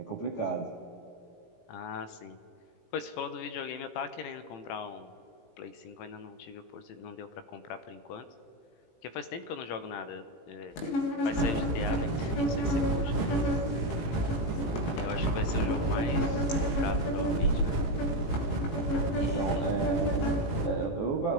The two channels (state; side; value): late; right; 18 ms